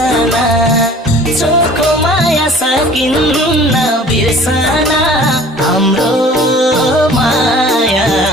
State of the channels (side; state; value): both; normal; correlation 0.47